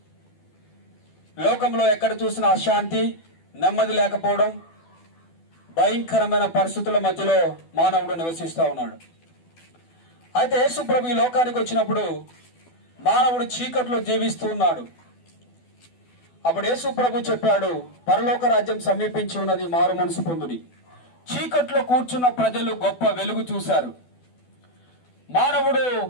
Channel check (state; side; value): late; right; 12 ms